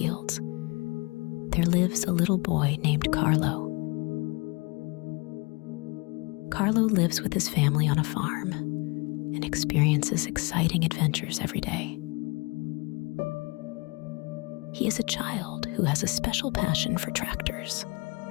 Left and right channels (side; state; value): right; quieter; 27.5 dB